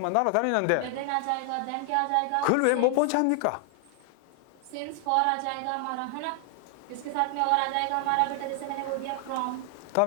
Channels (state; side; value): different; both; correlation 0.00